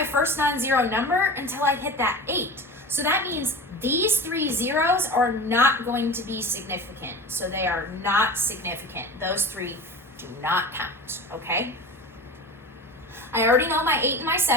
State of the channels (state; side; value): normal; both; correlation 0.32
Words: first non-zero number until I hit that 8. So that means these 3 zeros are not going to be significant. So they are not significant. Those 3 do not count, okay? I already know my 8 and my